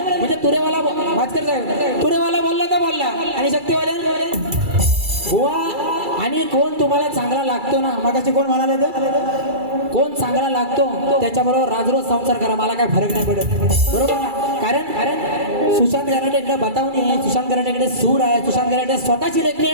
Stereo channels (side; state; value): left; late; 2.3 ms